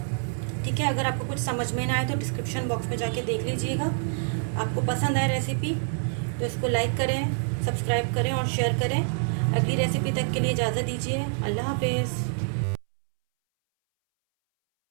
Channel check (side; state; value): left; silent; 60 dB below the other